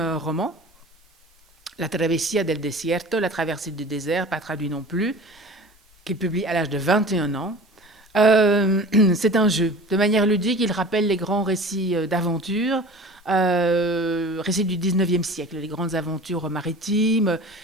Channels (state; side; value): normal; both; correlation 0.40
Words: roman, La Travesía del Desierto, La traversée du désert, pas traduit non plus, qu'il publie à l'âge de 21 ans. C'est un jeu. De manière ludique, il rappelle les grands récits d'aventure, récits du 19e siècle, les grandes aventures maritimes.